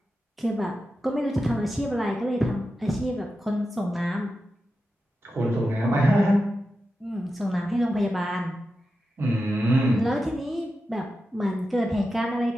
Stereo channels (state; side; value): normal; both; correlation 0.91